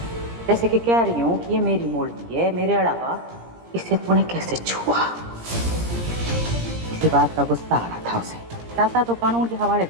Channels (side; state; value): left; late; 17 ms